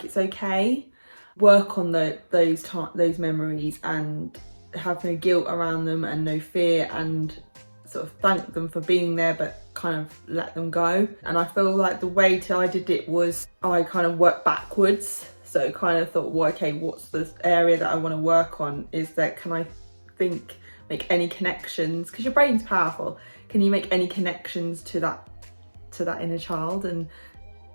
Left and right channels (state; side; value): inverted; both; correlation -1.00